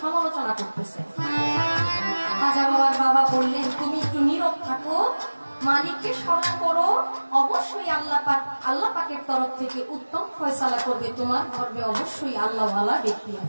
সমালোচনা করতেছে। খাজা বাবার বাবা বললেন তুমি একটু নীরব থাকো, মালিককে স্মরণ করো, অবশ্যই আল্লাহ পাকের তরফ থেকে উত্তম ফয়সালা করবে, তোমার গর্ভে অবশ্যই আল্লাহওয়ালা ব্যক্তি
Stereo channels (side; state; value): both; inverted; correlation -1.00